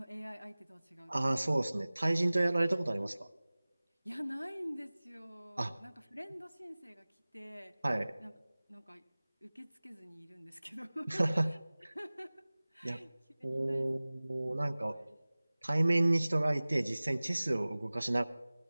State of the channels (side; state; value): both; inverted; correlation -0.99